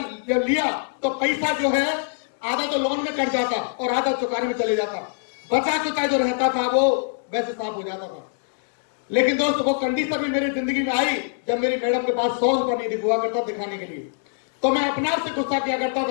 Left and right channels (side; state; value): right; silent; 63 dB below the other